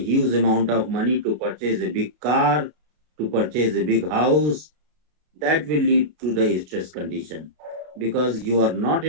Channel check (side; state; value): left; late; 33 ms